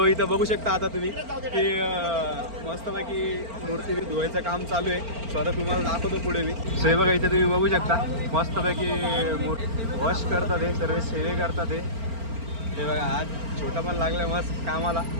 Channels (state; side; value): late; left; 4.4 ms